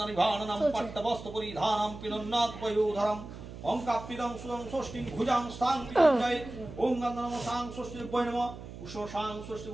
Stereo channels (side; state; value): right; noise; hum, 12 dB below the sound